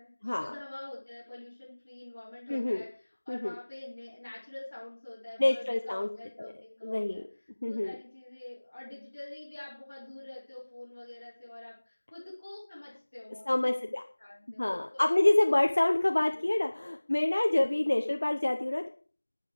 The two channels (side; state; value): both; inverted; correlation -1.00